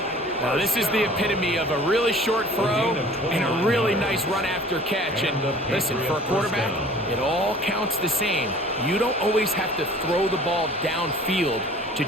Now, this is the epitome of a really short throw and a really nice run after catch. And listen, for a quarterback, it all counts the same. You don't always have to throw the ball downfield to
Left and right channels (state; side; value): normal; both; correlation 0.48